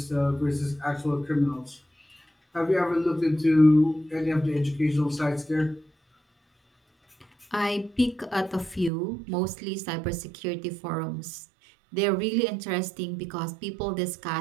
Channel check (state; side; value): drops out; left; at 8.9 s